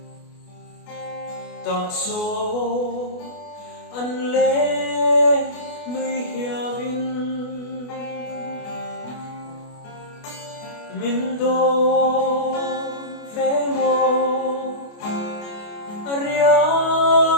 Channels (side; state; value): right; late; 28 ms